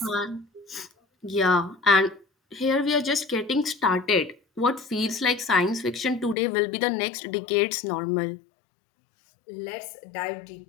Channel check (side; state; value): right; drops out; at 6.4 s